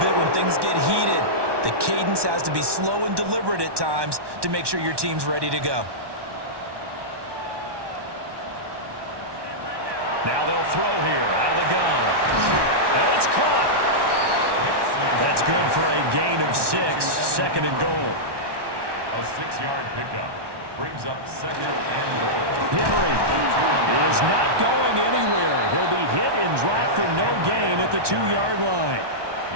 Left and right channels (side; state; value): left; late; 1.2 ms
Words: bit when things get heated. The cadence has to be slow and deliberate at times to make sure your team's ready to go. Now they'll throw here out of the gun. And it's caught. That's good for a gain of 6, 2nd and goal. A 6-yard pickup brings up 2nd and goal. Henry is not going anywhere. He'll be hit and dropped for no gain at the 2-yard line.